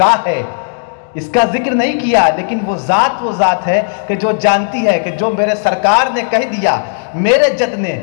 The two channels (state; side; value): silent; right; digital silence